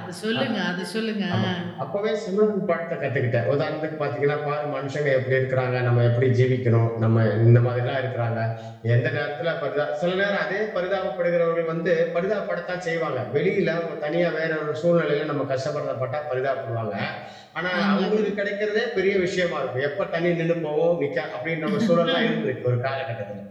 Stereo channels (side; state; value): both; identical; correlation 1.00